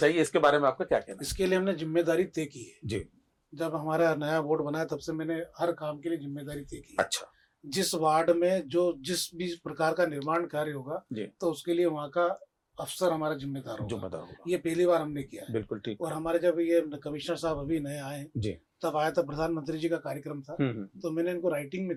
इसके बारे में आपका क्या कहना इसके लिए हमने जिम्मेदारी तय की है। है? जी। जब हमारा नया बोर्ड बना तब से मैंने हर काम के लिए जिम्मेदारी तय की है। अच्छा जिस वार्ड में जो जिस भी प्रकार का निर्माण कार्य होगा जी। तो उसके लिए वहाँ का अफसर हमारा जिम्मेदार जो होगा। बता होगा। ये पहली बार हमने किया है। बिल्कुल ठीक। और हमारे जब ये कमिश्नर साहब अभी नए आए जी। तब आया था, प्रधानमंत्री जी का कार्यक्रम था, तो मैंने इनको राइटिंग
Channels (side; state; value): both; identical; correlation 1.00